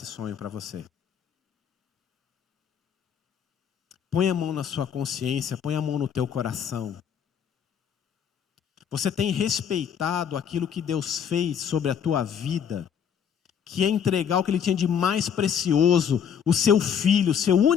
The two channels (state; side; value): quieter; right; 7.9 dB